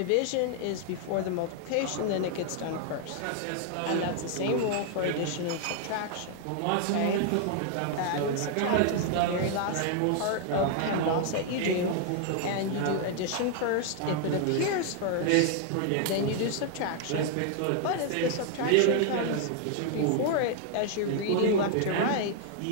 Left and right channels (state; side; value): different; both; correlation 0.00